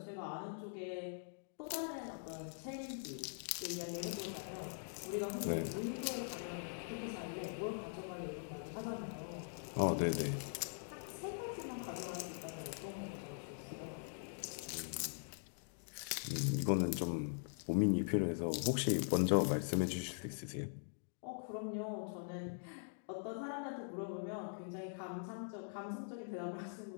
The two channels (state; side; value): silent; right; digital silence